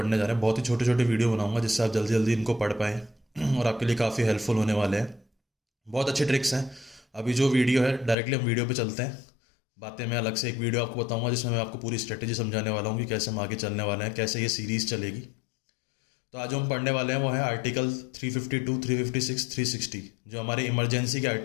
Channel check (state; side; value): drops out; right; at 8.2 s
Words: जा रहे हैं बहुत ही छोटे छोटे वीडियो बनाऊंगा जिससे आप जल्दी जल्दी इनको पढ़ पाएँ और आपके लिए काफ़ी हेल्पफुल होने वाले हैं। बहुत अच्छे ट्रिक्स हैं। अभी जो वीडियो है डायरेक्टली हम वीडियो पे चलते हैं। बातें मैं अलग से एक वीडियो आपको बताऊंगा जिसमें मैं आपको पूरी स्ट्रेटेजी समझाने वाला हूँ कि कैसे हम आगे चलने वाले हैं, कैसे ये सीरीज़ चलेगी। तो आज जो हम पढ़ने वाले हैं वो है आर्टिकल 352, 356, 360 जो हमारे इमरजेंसी के